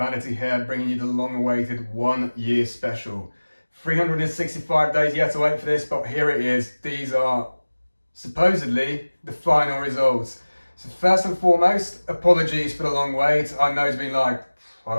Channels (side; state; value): both; inverted; correlation -1.00